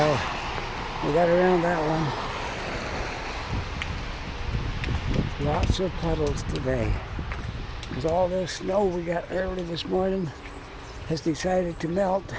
We got around that one. Lots of puddles today. Because all this snow we got early this morning has decided to melt.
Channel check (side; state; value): both; identical; correlation 1.00